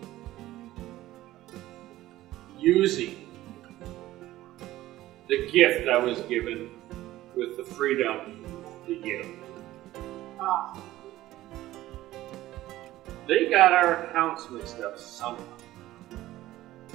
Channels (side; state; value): left; quieter; 15.6 dB